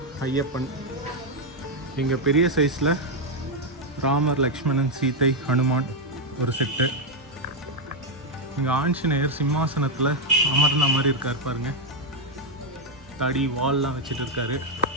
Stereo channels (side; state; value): both; normal; correlation 0.02